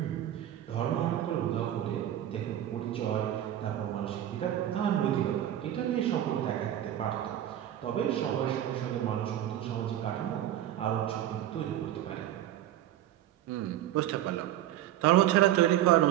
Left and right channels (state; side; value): quieter; left; 12.2 dB